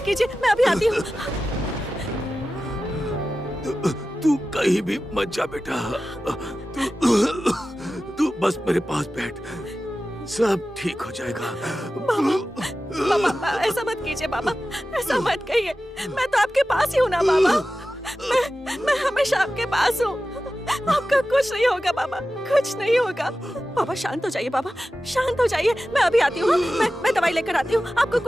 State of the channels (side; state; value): both; normal; correlation 0.94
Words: कीजिए, मैं अभी आती हूँ। तू कहीं भी मत जा बेटा, तू बस मेरे पास बैठ, सब ठीक हो जाएगा। बाबा, बाबा ऐसा मत कीजिए बाबा, ऐसा मत कहिए। मैं तो आपके पास ही हूँ ना बाबा, मैं हमेशा आपके पास हूँ। आपका कुछ नहीं होगा बाबा, कुछ नहीं होगा। बाबा शांत हो जाइए बाबा, शांत हो जाइए। मैं अभी आती हूँ, मैं दवाई लेकर आती हूँ। आपको